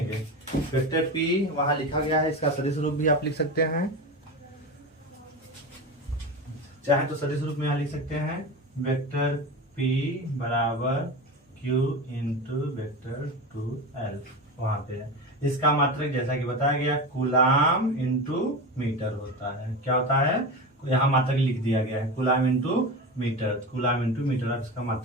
वेक्टर P वहां लिखा गया है, इसका सदिश रूप भी आप लिख सकते हैं। चाहे तो सदिश रूप में यहाँ लिख सकते हैं, वेक्टर P बराबर Q इंटू वेक्टर 2L, वहां पे है। इसका मात्रक जैसा कि बताया गया कूलाम इंटू मीटर होता है। क्या होता है, यहाँ मात्रक लिख दिया गया है, coulomb into metre, coulomb into metre, आप इसका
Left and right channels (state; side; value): normal; both; correlation 0.24